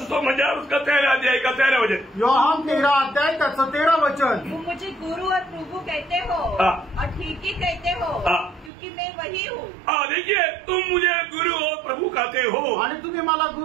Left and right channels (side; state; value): left; drops out; at 8.7 s